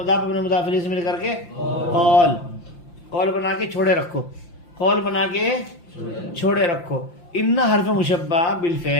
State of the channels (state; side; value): late; right; 5.8 ms